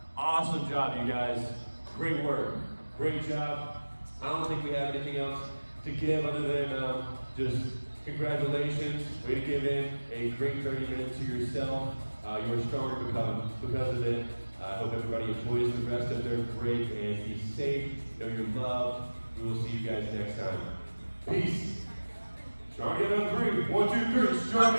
Awesome job, you guys. Great work. Great job. I don't think we have anything else to give other than just congratulations. Way to give in a great 30 minutes to yourself. You're stronger because of it. I hope everybody enjoys the rest of their break and be safe. Know you're loved. We will see you guys next time. Peace. Strong together on 3. 1, 2, 3. Strong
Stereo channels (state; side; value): inverted; both; correlation -1.00